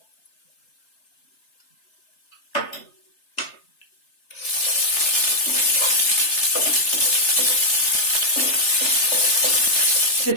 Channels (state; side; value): late; right; 3.3 ms